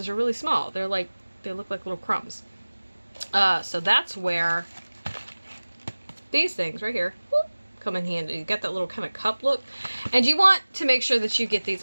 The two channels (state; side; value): inverted; both; correlation -1.00